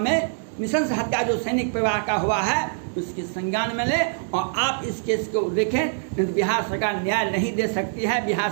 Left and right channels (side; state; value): left; silent; digital silence